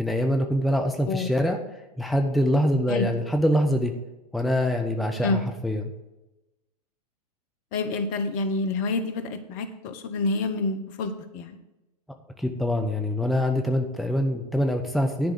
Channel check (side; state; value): both; normal; correlation 0.58